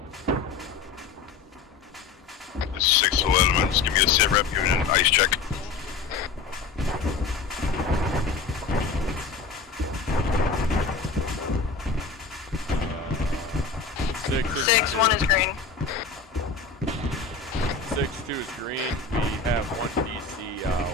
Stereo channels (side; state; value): right; quieter; 4.8 dB